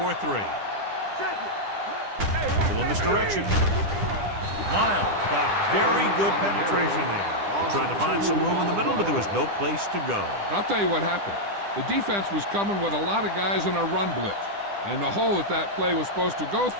Check it. A little misdirection. Miles got very good penetration there. Trying to find some room in the middle, but there was no place to go. I'll tell you what happened. The defense was coming with a lot of guys in a run blitz, and the hole that play was supposed to go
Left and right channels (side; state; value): left; late; 10 ms